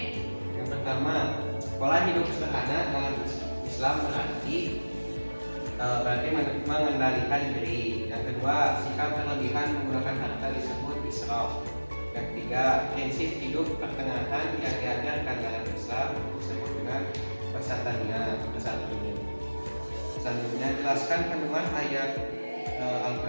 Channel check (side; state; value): both; inverted; correlation -1.00